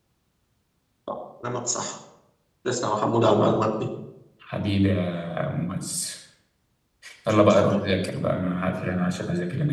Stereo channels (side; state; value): both; identical; correlation 1.00